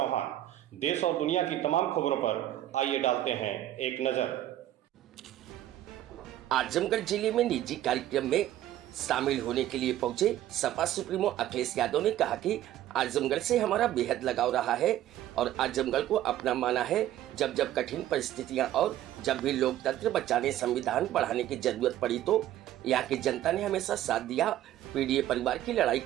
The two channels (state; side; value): quieter; left; 13.0 dB